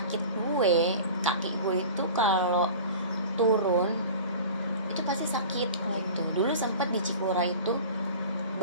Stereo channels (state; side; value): inverted; both; correlation -0.38